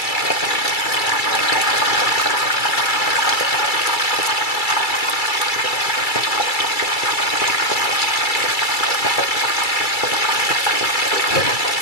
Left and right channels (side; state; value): right; late; 2.3 ms